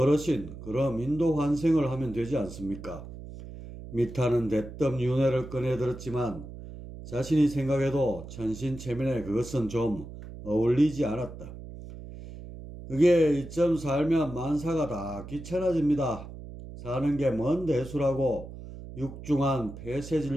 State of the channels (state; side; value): noise; right; hum, 13 dB below the sound